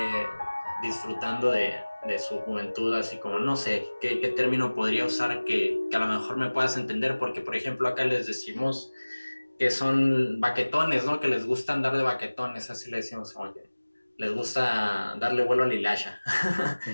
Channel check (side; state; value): both; inverted; correlation -1.00